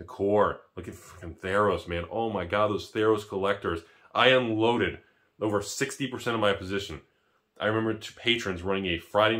core. Look at freaking Theros, man. Oh my god, those Theros collectors. I unloaded over 60% of my position. I remember two patrons running a Friday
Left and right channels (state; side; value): identical; both; correlation 1.00